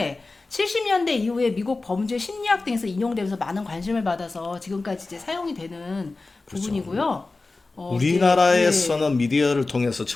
70년대 이후에 미국 범죄 심리학 등에서 인용되면서 많은 관심을 받아서 지금까지 이제 사용이 되는 부분이고요. 우리나라에서는 미디어를 통해서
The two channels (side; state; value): right; quieter; 3.5 dB